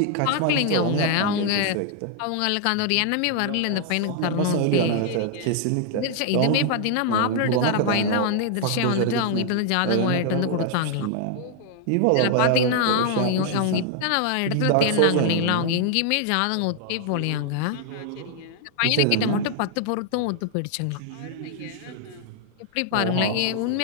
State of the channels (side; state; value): both; different; correlation 0.00